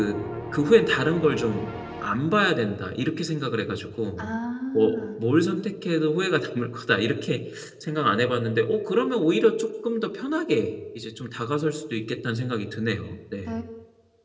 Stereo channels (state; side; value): identical; both; correlation 1.00